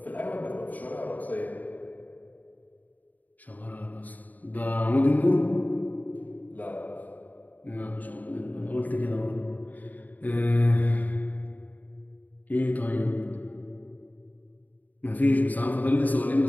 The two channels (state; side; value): late; right; 0.080 ms